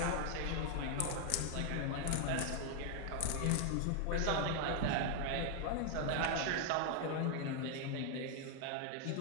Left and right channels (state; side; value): different; both; correlation 0.00